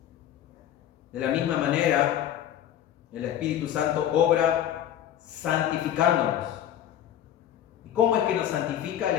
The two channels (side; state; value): right; quieter; 11.0 dB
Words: De la misma manera, el Espíritu Santo obra santificándonos. ¿Y cómo es que nos santifica el